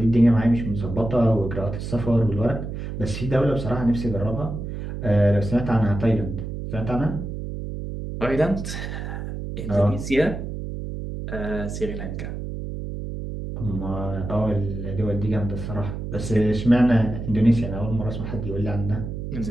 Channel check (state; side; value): noise; right; hum, 6 dB below the sound